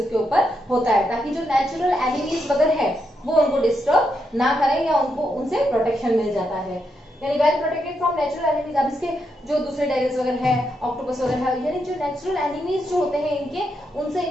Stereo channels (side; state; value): both; normal; correlation 0.81